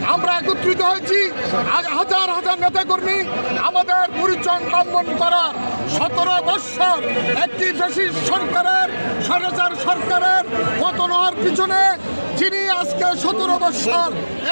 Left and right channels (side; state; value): both; inverted; correlation -1.00